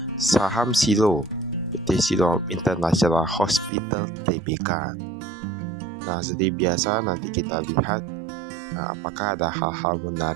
Saham Silo, PT Silo International Hospital Tbk. Nah, seperti biasa nanti kita lihat apakah ada hal-hal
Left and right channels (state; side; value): drops out; left; at 3.7 s